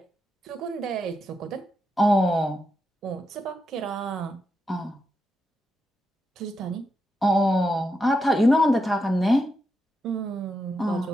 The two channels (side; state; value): both; normal; correlation 0.85